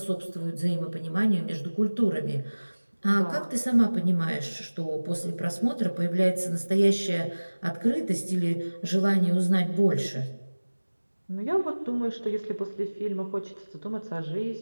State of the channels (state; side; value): inverted; both; correlation -1.00